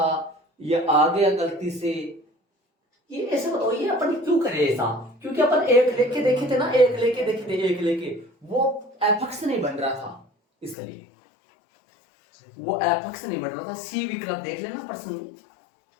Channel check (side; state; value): right; drops out; at 10.8 s